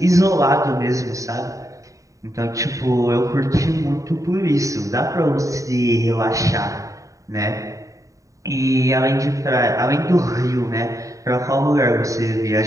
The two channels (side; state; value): left; late; 0.16 ms